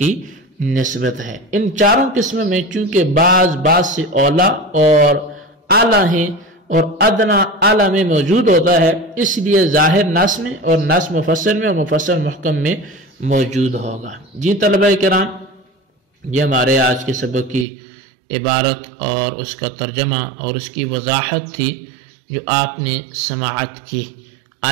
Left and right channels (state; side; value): drops out; left; at 17.7 s